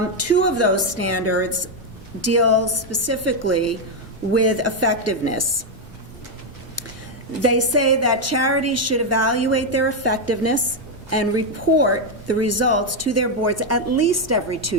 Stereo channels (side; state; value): both; normal; correlation 0.03